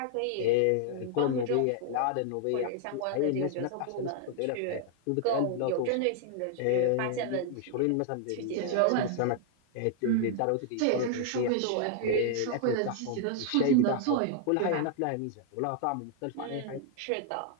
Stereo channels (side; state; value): both; different; correlation 0.00